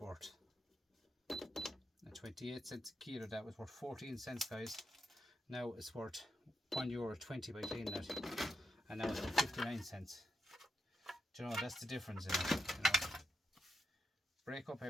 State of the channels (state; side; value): normal; both; correlation 0.84